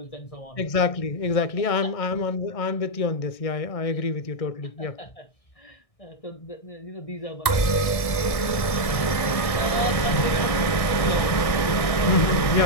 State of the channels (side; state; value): right; late; 1.6 ms